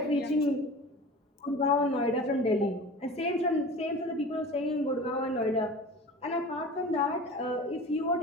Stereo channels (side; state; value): both; normal; correlation 0.37